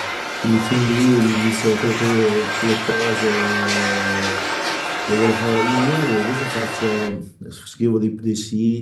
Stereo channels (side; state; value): both; identical; correlation 1.00